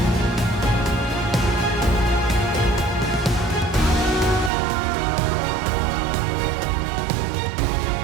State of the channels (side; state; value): left; drops out; at 4.5 s